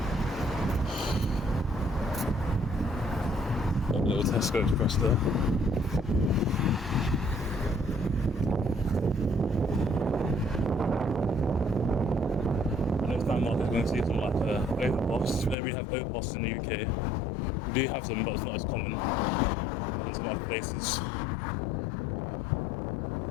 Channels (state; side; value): drops out; right; at 15.6 s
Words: Little Tesco Express there. Next time I'm going to see something like overpass. We don't really have overpass in the UK. We do have them, but it's not as common as some other places.